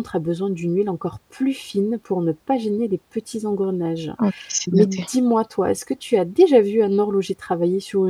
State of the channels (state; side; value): identical; both; correlation 1.00